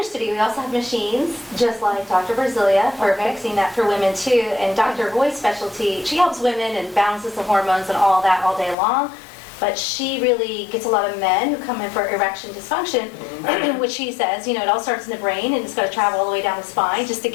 studio, we also have machines, just like Dr. Brasilia, for Okay. fixing that for women too. And Dr. Roy's specialty, she helps women and balances the hormones and all that all day long. But she really gets a lot of men who come in for erection dysfunction, which she says, it all starts in the brain and it's got to travel all the way down the spine just to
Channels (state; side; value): drops out; right; at 8.8 s